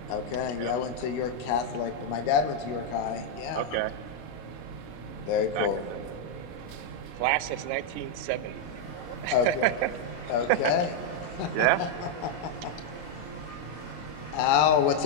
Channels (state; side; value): late; right; 25 ms